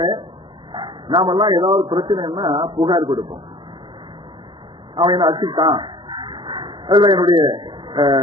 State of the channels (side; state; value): left; late; 0.23 ms